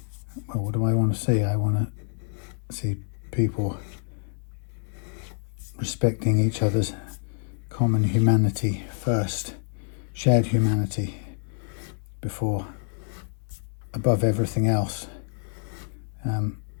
well, what do I want to see? I want to see people respecting each other's common humanity first, shared humanity above everything else.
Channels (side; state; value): right; silent; 60 dB below the other